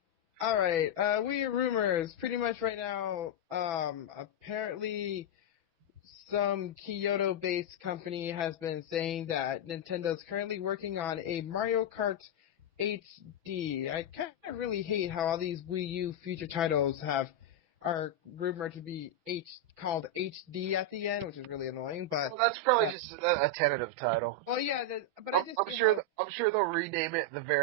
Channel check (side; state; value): left; late; 6.1 ms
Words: Alright, Wii U rumors. Pretty much right now, apparently some Kyoto-based company has been saying that Nintendo's currently working on a Mario Kart HD. I kind of really hate how all these Wii U future titles are rumored to be called HD at the end, which is really annoying. But Well, that's probably just a tentative title. well, yeah, but I just I'm sure they'll rename it the